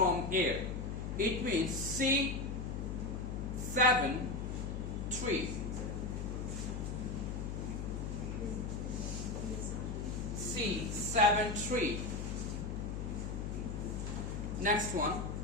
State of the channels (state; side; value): noise; left; hum, 4 dB below the sound